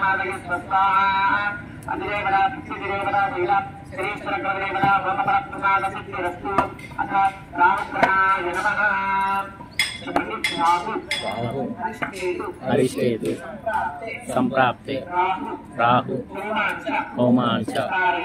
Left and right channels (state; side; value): identical; both; correlation 1.00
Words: స్వస్వాహా అధిదేవతా పితృదేవతా వీరా శ్రీశ్వరగ్రహదేవతా భవపరప్రసాదసిద్ధిరస్తు అథ రామగ్రహాయ నమః. అరిష్టేతు సంప్రాప్తే రాహు హోమాంచ